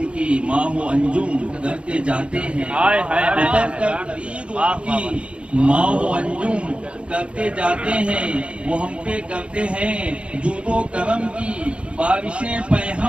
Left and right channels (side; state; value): left; late; 0.058 ms